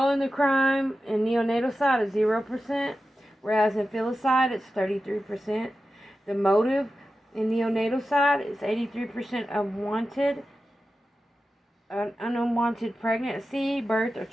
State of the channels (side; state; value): both; normal; correlation 0.92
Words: the crime in neonaticide is 0%, whereas in filicide it's 33%. The motive in neonaticide is 83% unwanted pregnancy, birth, or